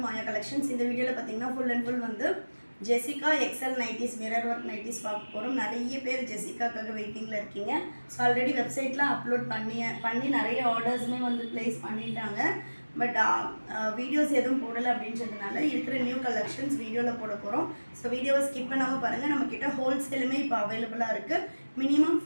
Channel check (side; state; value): both; inverted; correlation -1.00